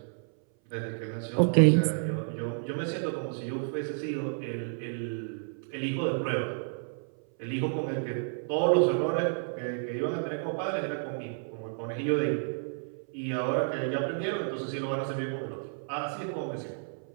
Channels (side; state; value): left; silent; 57 dB below the other